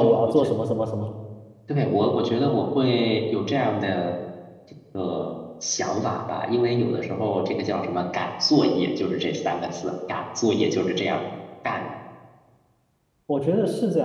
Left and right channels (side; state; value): both; identical; correlation 1.00